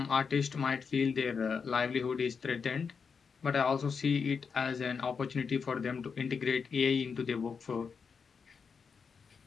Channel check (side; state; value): right; quieter; 5.8 dB